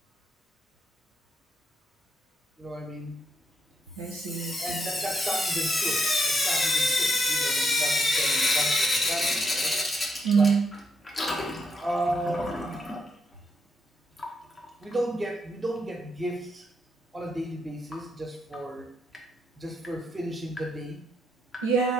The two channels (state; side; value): normal; both; correlation 0.78